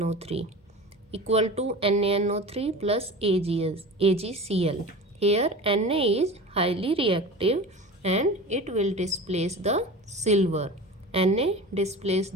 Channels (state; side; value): normal; both; correlation 0.33